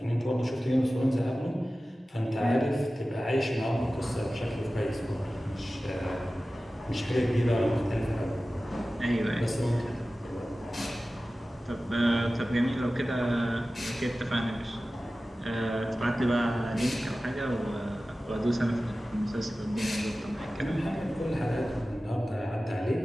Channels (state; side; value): normal; both; correlation 0.96